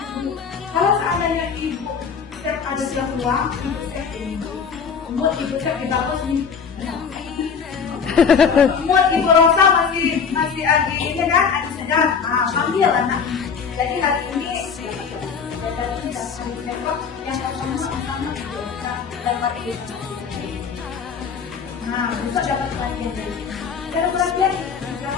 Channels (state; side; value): quieter; right; 6.2 dB